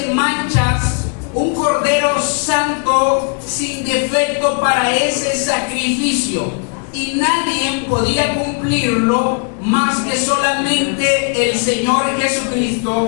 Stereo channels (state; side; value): quieter; right; 39.7 dB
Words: manchas, un cordero santo, sin defecto para ese sacrificio. Y nadie podía cumplirlo más que solamente el Señor Jesucristo